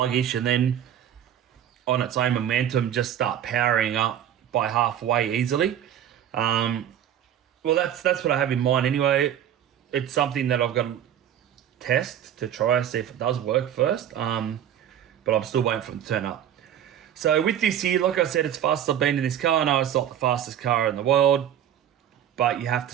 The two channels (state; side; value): quieter; left; 10.2 dB